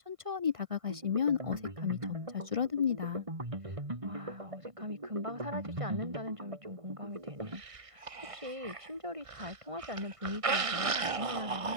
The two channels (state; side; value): late; left; 1.6 ms